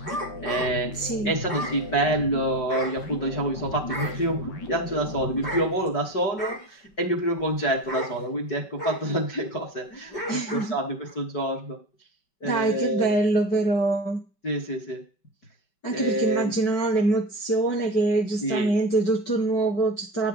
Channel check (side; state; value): right; late; 5.2 ms